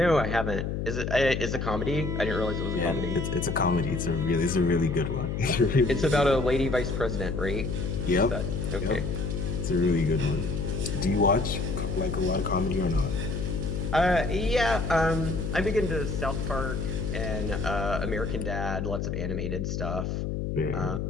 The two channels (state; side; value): noise; left; hum, 2 dB below the sound